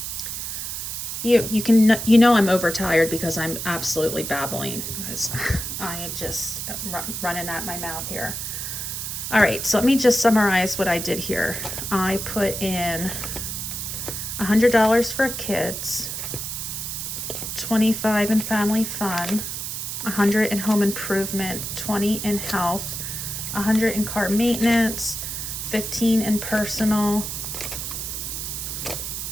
you know I'm overtired because I'm absolutely babbling. I just running at my mouth here. All right, so let me just summarize what I did here. I put in $100 for kids, $25 in family fun, $100 in home improvement, $20 in health, $100 in car maintenance, $15 in personal,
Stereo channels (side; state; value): right; noise; hiss, 5 dB below the sound